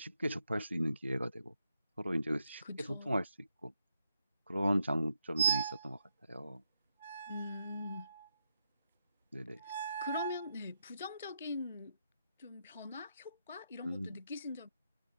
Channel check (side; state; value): both; inverted; correlation -0.81